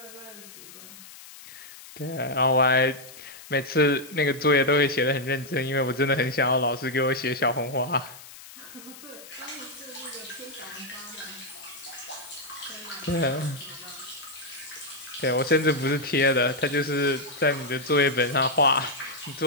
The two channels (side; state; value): left; noise; hiss, 17 dB below the sound